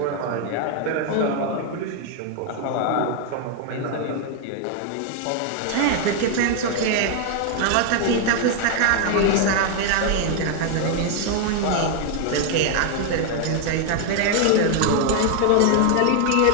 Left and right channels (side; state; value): both; different; correlation 0.00